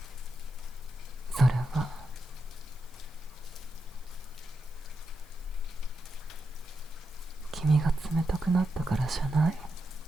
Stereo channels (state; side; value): noise; right; hiss, 28 dB below the sound